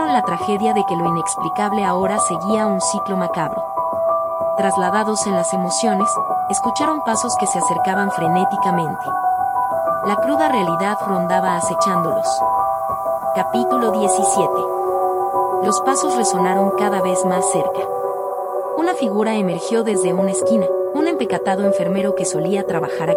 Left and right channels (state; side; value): identical; both; correlation 1.00